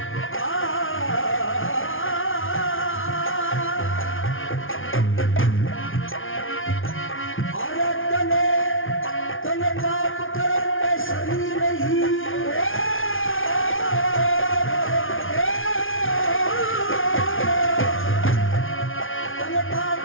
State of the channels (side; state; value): right; late; 0.58 ms